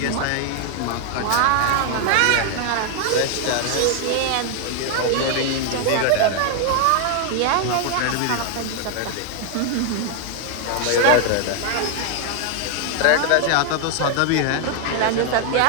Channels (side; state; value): both; different; correlation 0.00